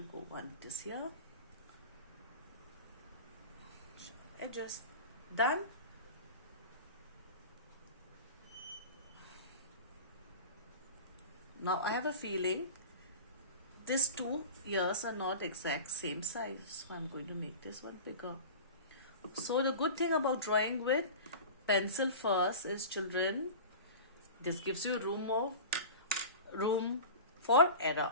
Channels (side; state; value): both; inverted; correlation -0.33